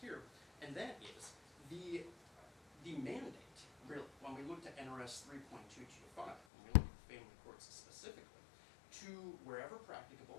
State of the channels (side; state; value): right; drops out; at 6.4 s